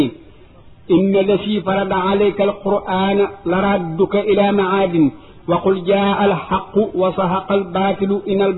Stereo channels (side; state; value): both; identical; correlation 1.00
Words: inna lasi farada alayka alqur'ana la radduka ila maadin wa qul jaa alxaqu wa sahaqa albaatilu in